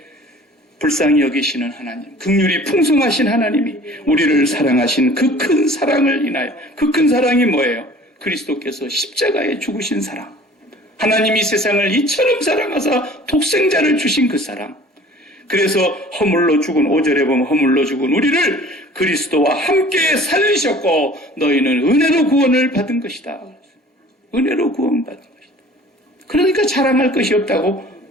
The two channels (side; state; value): both; normal; correlation 0.48